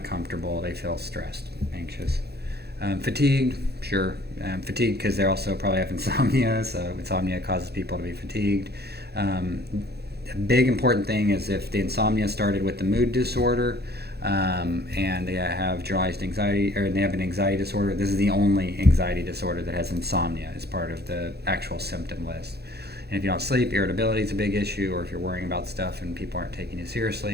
comfortable. They feel stressed, anxious. Fatigued, sure. Fatigued because they also probably have insomnia, so insomnia causes people to be fatigued. A big important thing is if the insomnia started with the mood disorder, and they have generalized anxiety, or they have an anxiety disorder, this is the only anxiety disorder that has insomnia as part of the actual symptom list. And if you don't sleep, irritability is a big issue, or if you're worrying about stuff and people aren't taking you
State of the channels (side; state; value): left; late; 0.47 ms